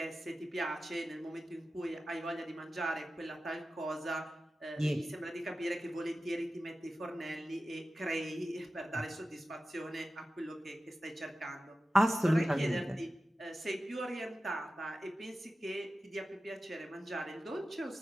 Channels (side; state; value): both; normal; correlation 0.94